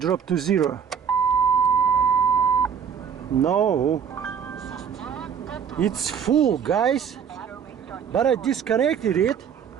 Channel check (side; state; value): left; quieter; 7.5 dB